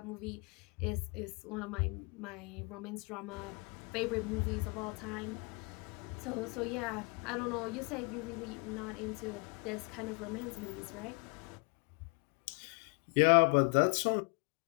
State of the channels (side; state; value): right; quieter; 31.6 dB